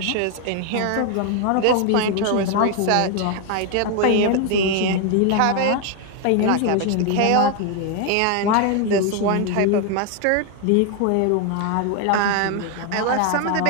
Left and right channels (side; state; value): both; different; correlation 0.01